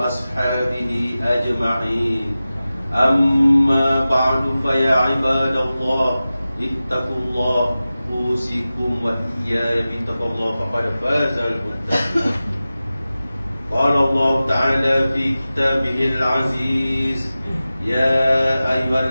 أجمعين. أما بعد فيا عباد الله اتقوا الله أوصيكم وإياي بتقوى الله فقد فاز المتقون. قال الله تعالى في كتابه العزيز يا أيها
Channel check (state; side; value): inverted; both; correlation -0.95